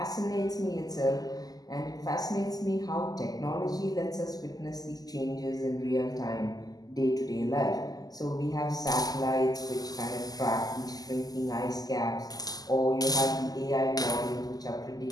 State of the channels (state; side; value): late; right; 0.18 ms